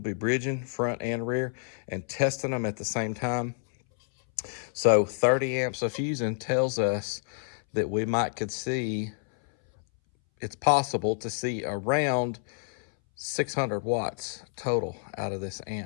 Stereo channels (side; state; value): right; silent; 59 dB below the other